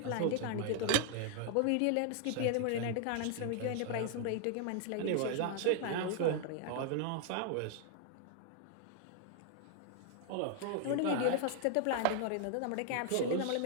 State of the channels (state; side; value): different; both; correlation 0.00